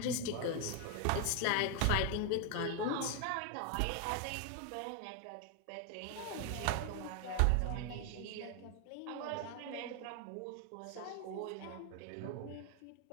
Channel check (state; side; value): different; both; correlation 0.01